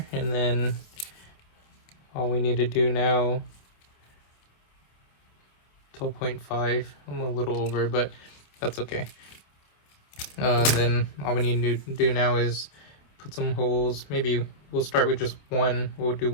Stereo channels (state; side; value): late; right; 27 ms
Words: and then all we need to do now, 12.5. I'm a little over, but that's okay. Then all we need to do now is put some holes. Maybe we'll start with just one. We'll do